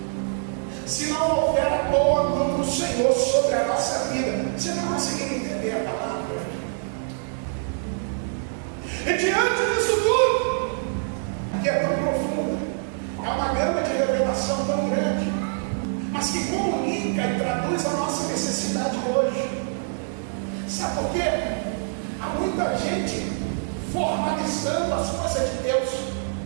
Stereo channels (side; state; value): left; silent; 61 dB below the other